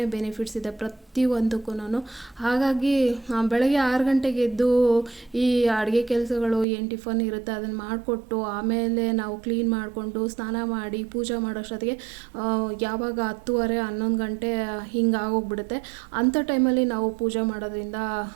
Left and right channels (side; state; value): left; drops out; at 6.7 s